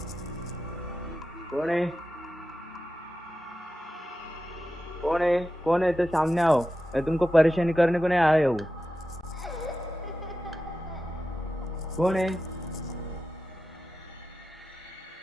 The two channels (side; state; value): both; normal; correlation 0.91